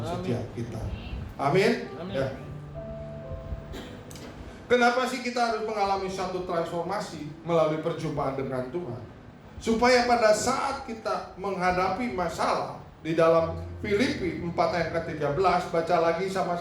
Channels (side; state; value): both; identical; correlation 1.00